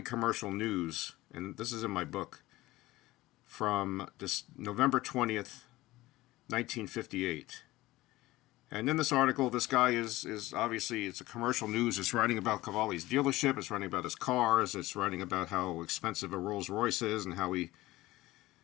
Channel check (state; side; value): quieter; right; 18.1 dB